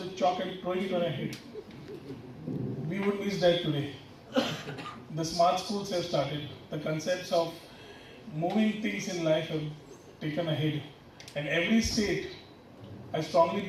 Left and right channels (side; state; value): both; identical; correlation 1.00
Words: chalk and throwing it on our head. We would miss that today. The smart schools have started. The concepts of moving things in life have taken ahead. And every state, I strongly